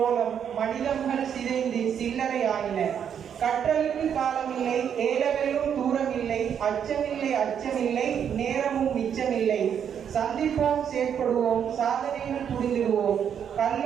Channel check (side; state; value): left; quieter; 8.3 dB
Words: மனிதர்கள் சிதைந்து சில்லறை ஆயின. கற்றலுக்கு காலமில்லை, ஏலவெல்லும் தூரமில்லை, அச்சமில்லை அச்சமில்லை, நேரமும் மிச்சமில்லை. சந்திப்போம், செயற்படுவோம், சாதனையில் புரிந்திடுவோம்.